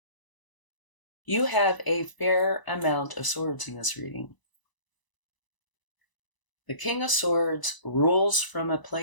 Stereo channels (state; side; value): late; right; 1.0 ms